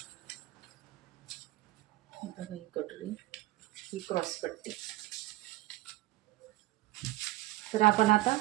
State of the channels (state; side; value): quieter; left; 18.1 dB